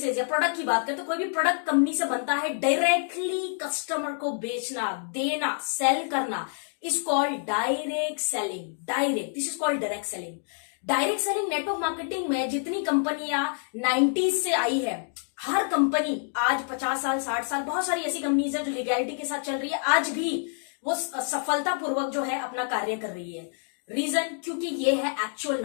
या प्रोडक्ट की बात करें तो कोई भी प्रोडक्ट कंपनी से बनता है, डायरेक्टली कस्टमर को बेचना, देना, सेल करना is called direct selling. Direct, this is called direct selling. Direct selling network marketing में जितनी कंपनियां 90s से आई है, हर कंपनी आज 50 साल 60 साल, बहुत सारी ऐसी कंपनीज है जो लीगैलिटी के साथ चल रही है, आज भी वो सफलतापूर्वक जो है अपना कार्य कर रही है। रीजन, क्योंकि ये है एक्चुअल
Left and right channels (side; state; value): right; silent; 57 dB below the other